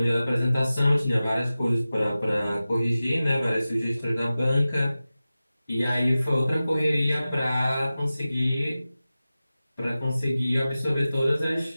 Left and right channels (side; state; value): both; inverted; correlation -0.95